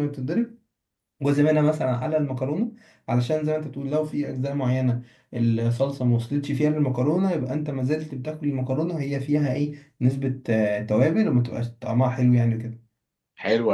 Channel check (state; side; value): identical; both; correlation 1.00